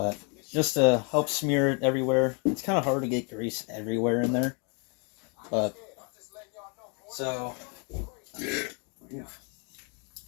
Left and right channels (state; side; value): quieter; right; 36.1 dB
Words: just to help smear it everywhere. It's kind of hard to get grease everywhere in there. But, so,